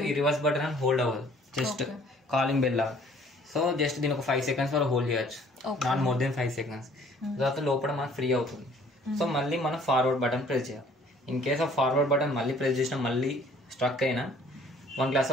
ఈ రివర్స్ బటన్ అని హోల్డ్ అవ్వదు, జస్ట్ కాలింగ్ బెల్ లాగా. సో జస్ట్ దీని ఒక 5 seconds వరకు హోల్డ్ చేయొచ్చు, నాట్ మోర్ దెన్ 5 seconds. తర్వాత లోపల మనకు ఫ్రీ అవుతుంది. సో మళ్ళీ మనం ఫార్వర్డ్ బటన్ ప్రెస్ చేయాలి. In case of forward button మళ్ళీ ప్రెస్ చేసినా మళ్ళీ స్ట్రక్ అయినా 1 glass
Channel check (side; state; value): both; normal; correlation 0.56